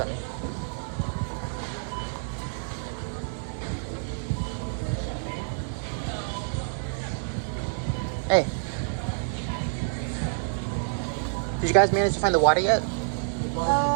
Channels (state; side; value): silent; left; digital silence